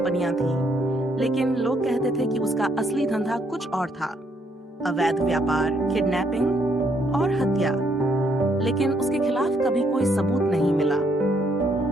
थीं, लेकिन लोग कहते थे कि उसका असली धंधा कुछ और था, अवैध व्यापार, किडनैपिंग और हत्या। लेकिन उसके खिलाफ कभी कोई सबूत नहीं मिला।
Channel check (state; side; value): normal; both; correlation 0.71